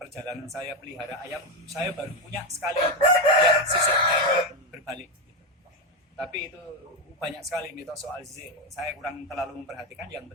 perjalanan saya pelihara ayam, saya baru punya sekali itu yang sisiknya ini berbalik gitu. Tapi itu banyak sekali mitos soal sisik, saya kurang terlalu memperhatikan. Yang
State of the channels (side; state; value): both; normal; correlation 0.10